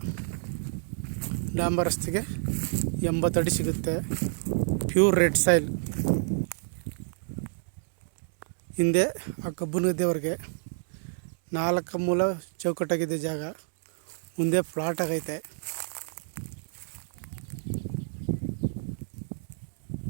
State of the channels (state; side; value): silent; left; 59 dB below the other